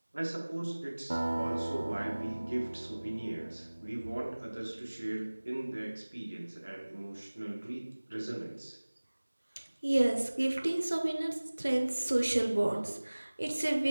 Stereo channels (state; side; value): inverted; both; correlation -1.00